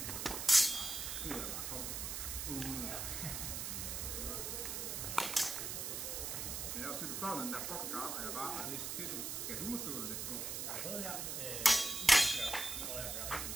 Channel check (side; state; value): right; noise; hiss, 3 dB below the sound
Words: Men jeg har set, du står den der fucking garn, og jeg bare har læst det. Kan du måske gøre det på? Jeg har prøvet her.